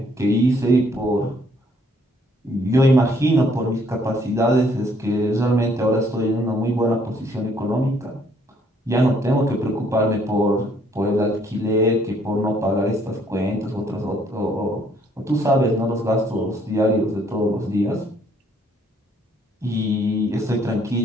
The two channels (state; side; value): normal; both; correlation 0.66